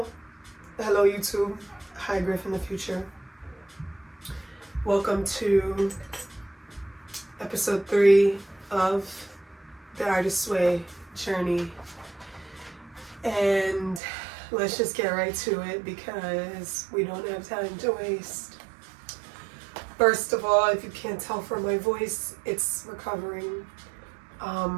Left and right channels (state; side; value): drops out; left; at 14.0 s